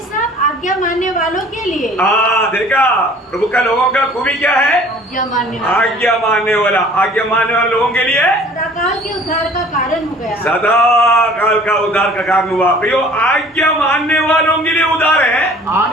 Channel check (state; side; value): normal; both; correlation 0.51